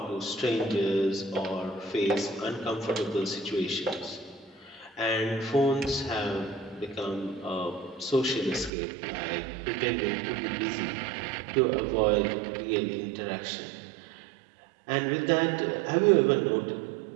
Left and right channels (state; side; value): drops out; left; at 8.7 s